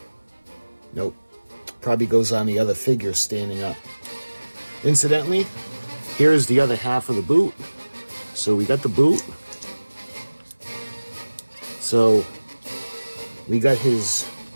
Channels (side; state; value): both; inverted; correlation -1.00